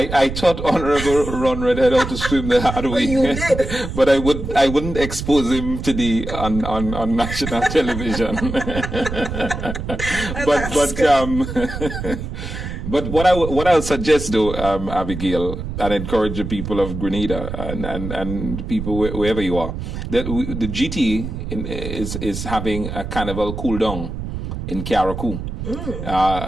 taught Honorable Ron Redhead how to swim the hard way. You did. But I wouldn't expose him to on national television. But what I'll suggest, though, Abigail, and encourage the people of Grenada and people wherever you are, that the GT is having a carnival cool down in Carriacou.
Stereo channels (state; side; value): noise; right; rumble, 6 dB below the sound